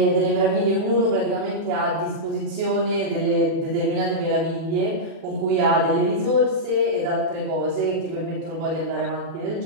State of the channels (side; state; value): left; late; 37 ms